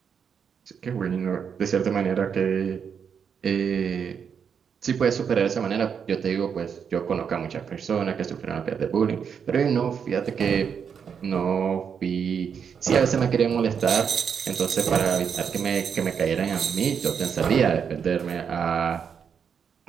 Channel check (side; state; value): left; quieter; 7.0 dB